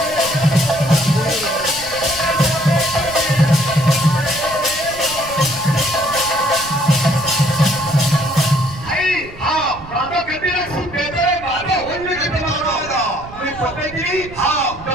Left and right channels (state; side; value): noise; right; rumble, 17 dB below the sound